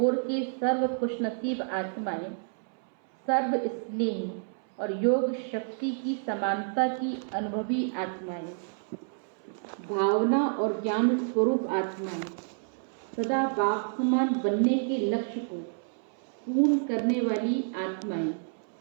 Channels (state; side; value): silent; left; 58 dB below the other